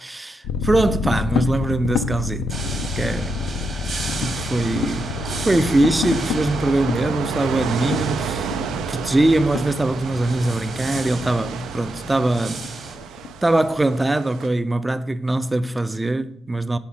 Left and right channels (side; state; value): both; normal; correlation 0.86